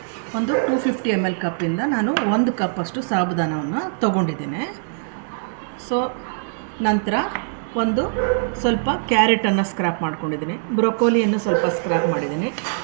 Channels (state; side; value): silent; left; digital silence